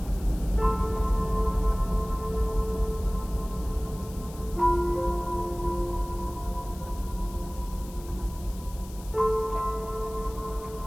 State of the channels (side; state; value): left; noise; hiss, 19 dB below the sound